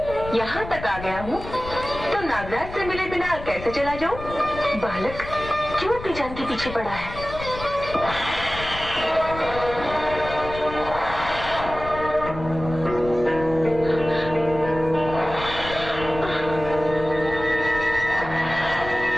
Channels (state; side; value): noise; left; rumble, 11 dB below the sound